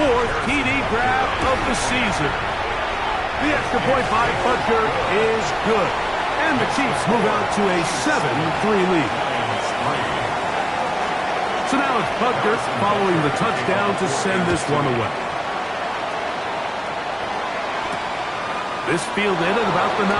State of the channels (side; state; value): both; identical; correlation 1.00